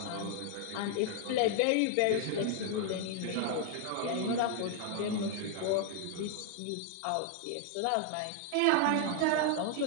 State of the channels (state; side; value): different; both; correlation 0.00